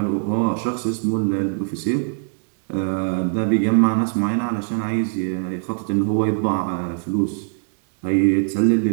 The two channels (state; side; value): silent; left; digital silence